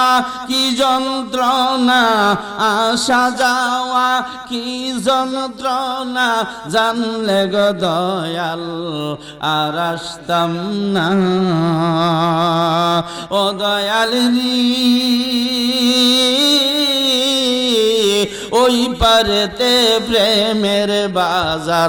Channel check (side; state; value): both; identical; correlation 1.00